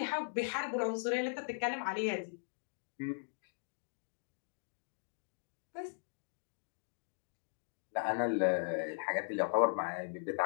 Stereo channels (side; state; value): right; silent; digital silence